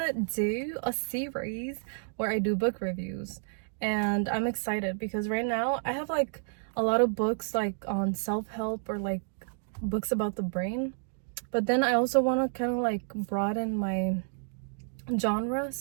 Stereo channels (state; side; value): silent; left; digital silence